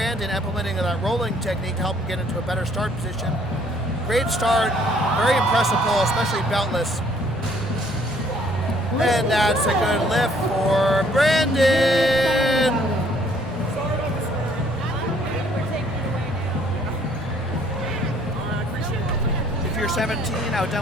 implementing that rolling technique to help him get into a better start position. Great start, very impressive pull, especially beltless. And that's a good lift for Brandon. If you're 17, I would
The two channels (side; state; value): both; normal; correlation 0.62